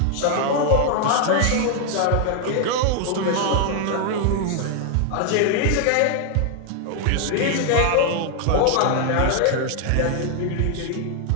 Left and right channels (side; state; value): both; different; correlation 0.00